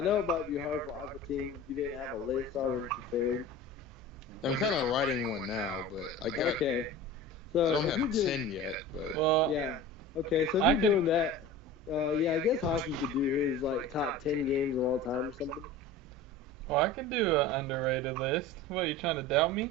it might be hard for AquateamV if you didn't have a list already prepared. I'm kind of writing one now, but I got. Okay. So I don't have 10 yet, but. Well, yeah. Okay, so if you're doing that, yeah, I guess Hockey could do his like top 10 games of all time or something. Well, I could do an underrated list. What, are you trying to doubt me?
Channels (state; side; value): normal; both; correlation 0.35